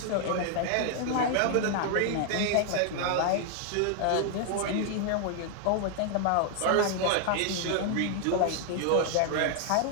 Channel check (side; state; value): both; different; correlation 0.00